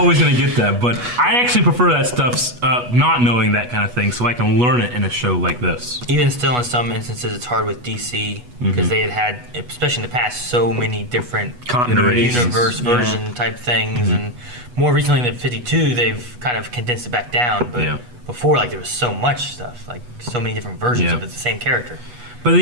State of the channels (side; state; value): left; late; 8.2 ms